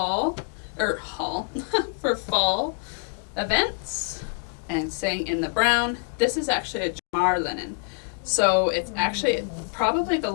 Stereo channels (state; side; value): quieter; right; 38.8 dB